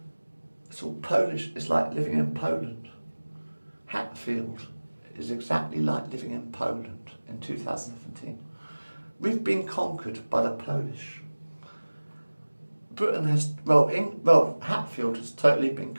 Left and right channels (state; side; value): inverted; both; correlation -1.00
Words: it's all Polish. It's like living in Poland. Hatfield is exactly like living in Poland in 2017. We've been conquered by the Polish. Britain has, Hatfield has totally been